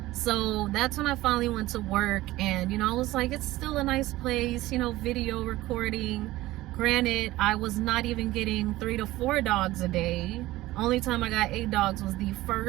So that's when I finally went to work, and, you know, I was like, it's still a nice place, you know, video recording. Granted, I was not even getting 3 to 4 dogs a day. Only time I got 8 dogs was the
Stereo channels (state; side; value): quieter; left; 17.2 dB